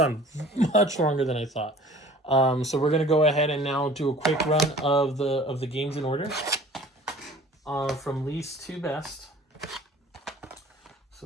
much longer than I thought. So we're going to go ahead and now do a quick run of the games in order from least to best.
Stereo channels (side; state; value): both; normal; correlation 0.48